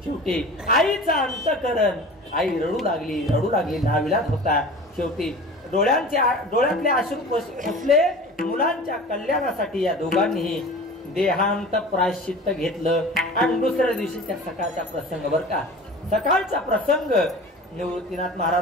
शेवटी आईचा अंतःकरण, आई रडू लागली नाविलाज होता. शेवटी डोळ्यातले अश्रू पुसले. मुलांच्या कल्याणासाठी या दोघांनीही देहांत प्रायश्चित्त घेतलं. आणि दुसऱ्या दिवशीच्या सकाळचा प्रसंग बरं का, सकाळचा प्रसंग. निवृत्तीनाथ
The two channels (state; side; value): normal; both; correlation 0.38